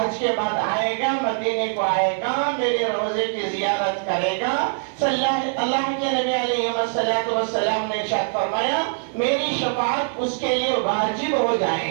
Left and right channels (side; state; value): left; silent; 63 dB below the other